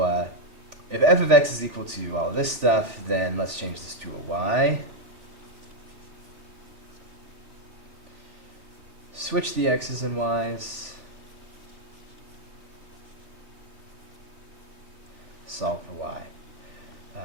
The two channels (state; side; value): late; left; 3.5 ms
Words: if f of x is equal to all of this stuff, then let's change this to a y. Switch the x's and y's. Solve for y.